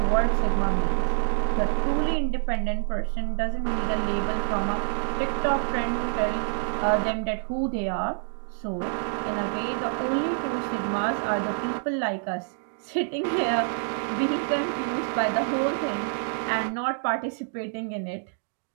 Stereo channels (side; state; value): left; silent; digital silence